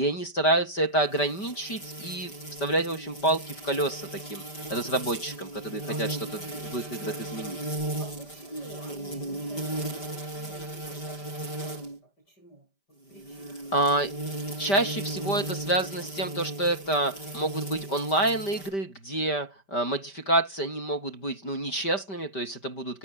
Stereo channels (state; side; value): late; right; 5.1 ms